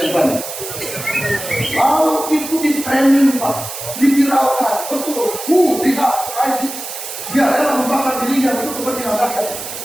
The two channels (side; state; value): right; noise; hiss, 9 dB below the sound